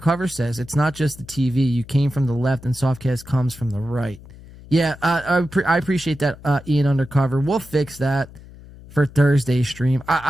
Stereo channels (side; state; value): left; noise; hum, 19 dB below the sound